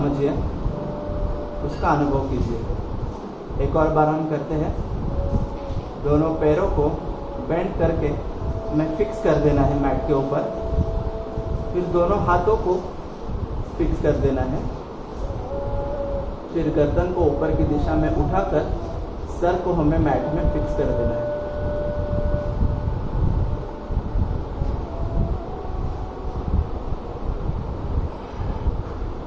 उसका अनुभव कीजिए। एक और बार हम करते हैं। दोनों पैरों को बेंड करके हमें फिक्स कर देना है मैट के ऊपर। फिर दोनों हाथों को फिक्स कर देना है। फिर गर्दन को ऊपर की दिशा में उठाकर सर को हमें मैट में फिक्स कर देना है।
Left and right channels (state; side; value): identical; both; correlation 1.00